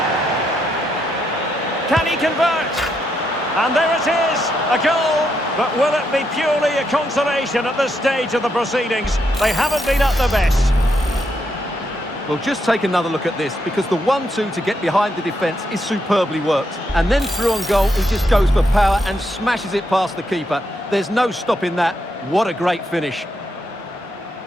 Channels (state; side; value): normal; both; correlation 0.80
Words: Can he convert? And there it is, a goal. But will it be purely a consolation at this stage of the proceedings? They haven't been at their best. Well, just take another look at this, because the 1-2 to get behind the defence is superbly worked. And then through on goal, he just goes for power and smashes it past the keeper. There's no stopping that. What a great finish.